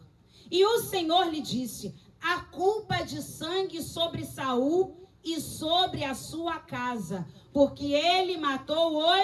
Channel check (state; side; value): identical; both; correlation 1.00